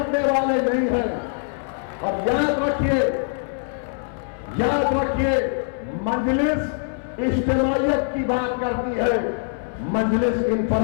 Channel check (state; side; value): silent; right; 63 dB below the other